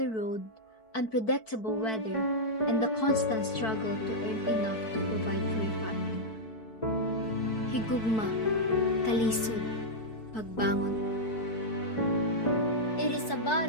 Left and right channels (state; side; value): late; right; 4.5 ms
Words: road, unpredictable weather, and the constant struggle to earn enough to provide for your family. Higugma, kalisod, pagbangon. It is a